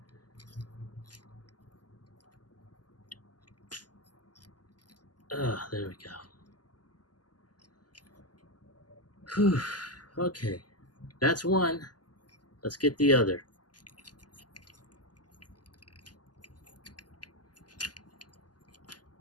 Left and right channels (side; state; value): right; late; 0.70 ms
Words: there we go. Whew. Okay, that's one. Let's get the other.